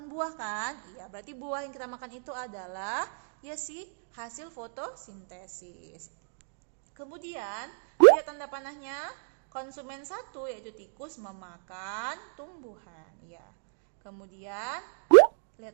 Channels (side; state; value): left; silent; digital silence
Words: buah kan? Iya, berarti buah yang kita makan itu adalah ya sih hasil fotosintesis. Kemudian lihat tanda panahnya, konsumen 1 yaitu tikus memakan tumbuhan ya. Kemudian